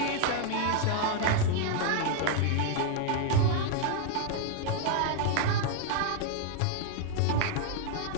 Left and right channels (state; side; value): different; both; correlation 0.00